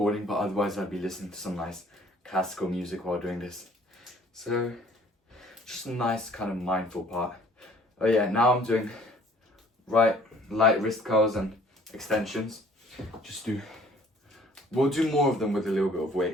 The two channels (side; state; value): both; normal; correlation 0.56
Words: but otherwise I'd be listening to some nice classical music while doing this. So just a nice kind of mindful part. Oh yeah, now I'm doing light wrist curls and extensions. We'll do more of them with a little bit of